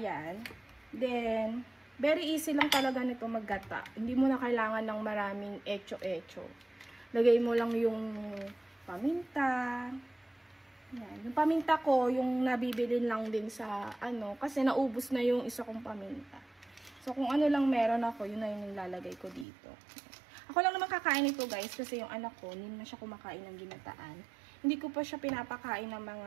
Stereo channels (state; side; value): drops out; left; at 19.5 s